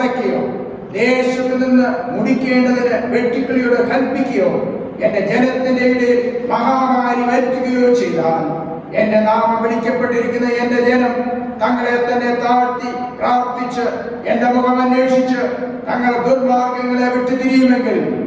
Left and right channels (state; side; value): identical; both; correlation 1.00